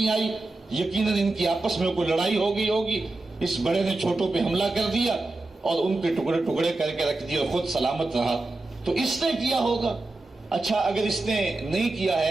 آئی. یقیناً ان کی آپس میں کوئی لڑائی ہو گئی ہوگی، اس بڑے نے چھوٹوں پہ حملہ کر دیا اور ان کے ٹکڑے ٹکڑے کر کے رکھ دیا اور خود سلامت رہا، تو اس نے کیا ہوگا. اچھا اگر اس نے نہیں کیا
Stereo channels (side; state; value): left; quieter; 3.0 dB